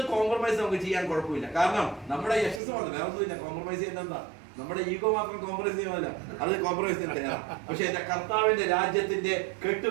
കോംപ്രമൈസ് നമുക്ക് ചെയ്യാൻ കുഴപ്പമില്ല. കാരണം നമ്മുടെ യശസ് മാത്രം, വേറെ ഒന്നുമില്ല. കോംപ്രമൈസ് ചെയ്യുന്നത് എന്താ? നമ്മുടെ ഈഗോ മാത്രം കോംപ്രമൈസ് ചെയ്യുന്നില്ല, അത് കോംപ്രമൈസ് ചെയ്യാൻ. പക്ഷെ എന്റെ കർത്താവിന്റെ രാജ്യത്തിന്റെ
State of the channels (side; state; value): left; drops out; at 2.6 s